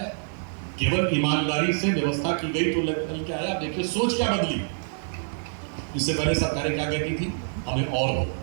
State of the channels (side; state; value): left; silent; digital silence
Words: केवल ईमानदारी से व्यवस्था की गई तो निकल के आया। देखिए सोच क्या बदली। इससे पहले सरकारें क्या कहती थी? हमें और दो।